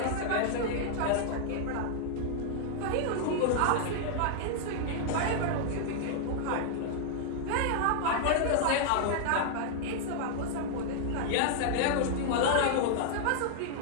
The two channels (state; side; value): different; both; correlation -0.01